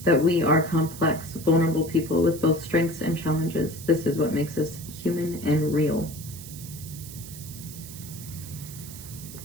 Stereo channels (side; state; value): right; noise; hiss, 14 dB below the sound